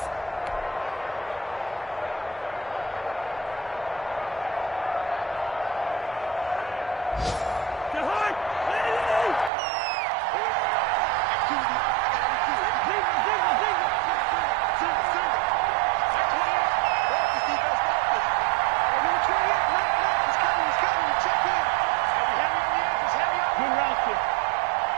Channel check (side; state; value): left; drops out; at 9.5 s